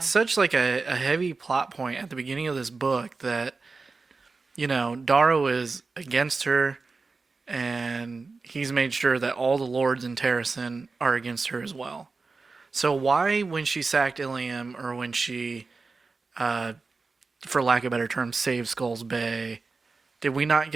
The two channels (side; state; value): left; quieter; 4.1 dB